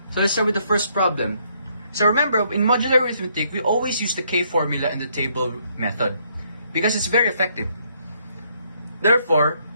So let's start with the first problem. So remember, in modular arithmetic, we always use the K formula and the table method because it's very effective. Therefore,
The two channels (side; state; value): both; inverted; correlation -0.70